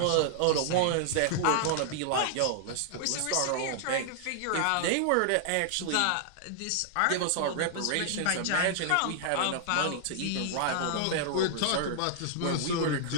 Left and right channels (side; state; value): both; different; correlation -0.01